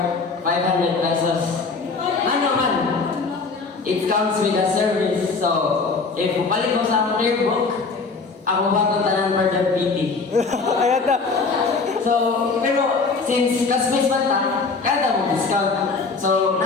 500 pesos. Ano man? It comes with a service. So, if balik mo sa akong clear book, ako ba itong tanan for the PT? Ayan na. So, pero since classmates man ta, kaya mo discount. So,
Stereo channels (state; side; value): quieter; right; 4.4 dB